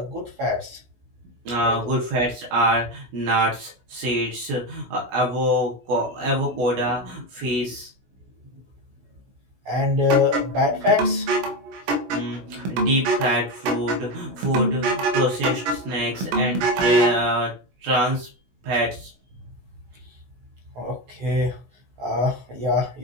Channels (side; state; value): left; late; 16 ms